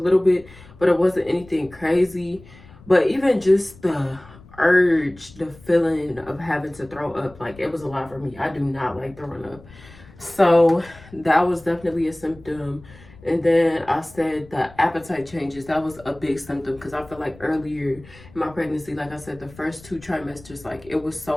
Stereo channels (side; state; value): left; noise; rumble, 22 dB below the sound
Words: bit, but it wasn't anything crazy. But even just the urge, the feeling of having to throw up, like it was a lot for me. I do not like throwing up. So that was definitely a symptom. And then I said the appetite changes. That was a big symptom because I feel like earlier in my pregnancy, like I said, the first 2 trimesters, like it was